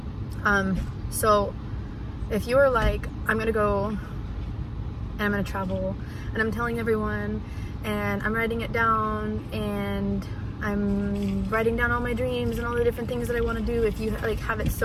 So if you're like, I'm gonna go and I'm gonna travel, and I'm telling everyone, and I'm writing it down, and I'm writing down all my dreams and all the different things that I want to do, if you like have it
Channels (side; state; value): both; identical; correlation 1.00